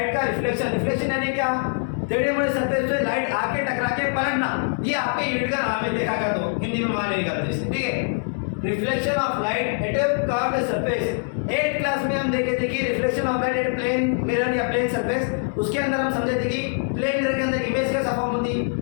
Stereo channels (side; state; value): right; silent; digital silence